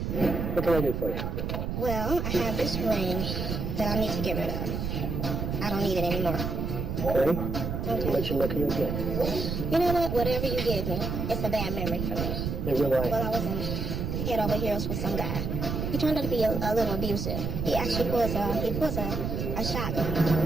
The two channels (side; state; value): right; noise; rumble, 2 dB below the sound